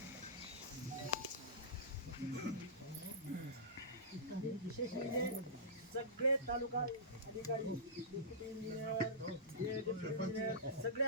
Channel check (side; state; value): both; normal; correlation -0.18